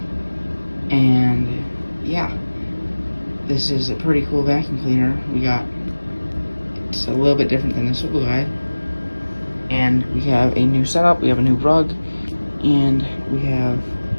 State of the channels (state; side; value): inverted; both; correlation -1.00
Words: And yeah, this is a pretty cool vacuum cleaner. It's a little bit different than the swivel guide. And we have a new setup, we have a new rug, and we have